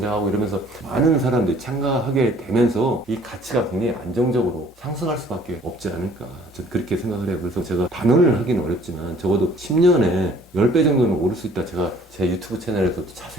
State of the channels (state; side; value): normal; both; correlation 0.55